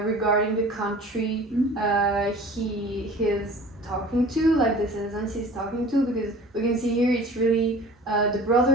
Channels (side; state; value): both; normal; correlation 0.43